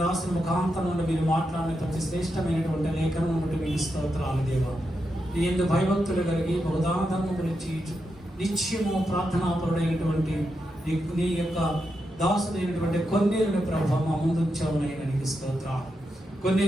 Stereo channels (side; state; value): both; normal; correlation 0.86